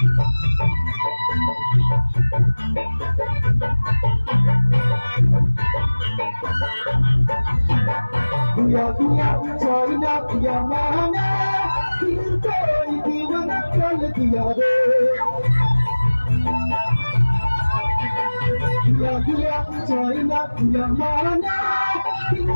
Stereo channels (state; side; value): inverted; both; correlation -1.00